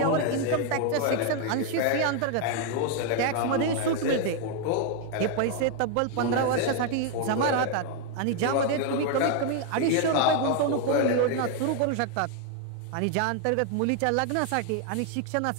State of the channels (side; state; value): both; different; correlation 0.00